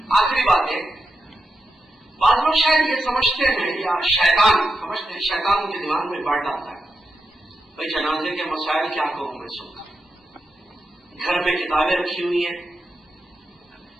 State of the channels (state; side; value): normal; both; correlation 0.88